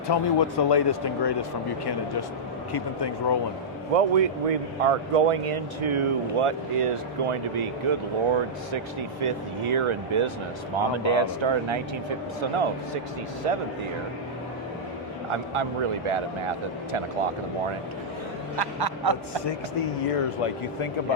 the latest and greatest from Buchanan, just keeping things rolling. Well, we are going into what is going to be, good Lord, 65th year in business. Mom and Dad started in 1950, so no, 67th year. I'm really bad at math at 10 o'clock in the morning. It's 60 years. Like, you think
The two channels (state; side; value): normal; both; correlation -0.10